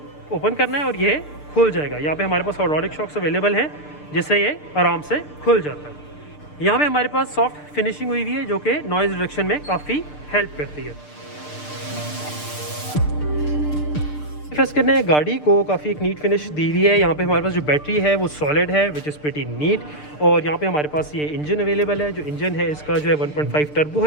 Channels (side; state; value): right; late; 6.7 ms